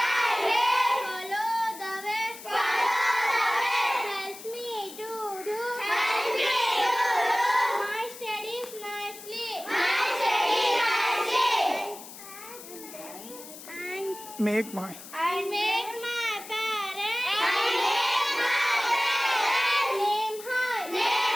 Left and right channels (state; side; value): noise; left; hiss, 15 dB below the sound